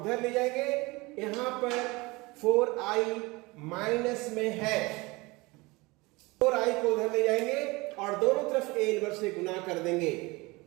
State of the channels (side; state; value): left; quieter; 23.6 dB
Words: ले जाएंगे, यहां पर 4i माइनस में है, 4i को उधर ले जाएंगे और दोनों तरफ ए इनवर्स से गुना कर देंगे।